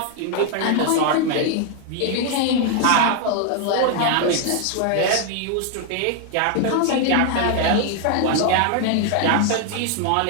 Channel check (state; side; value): different; both; correlation 0.00